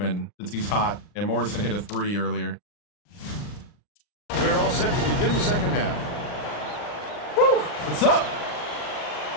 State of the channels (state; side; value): late; right; 39 ms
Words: since he's hot, and Morrison hit a 3 earlier. We're all set to begin the second half. Woo! What's up?